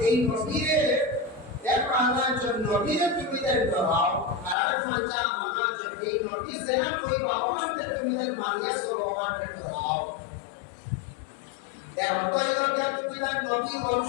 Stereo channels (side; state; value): right; drops out; at 4.5 s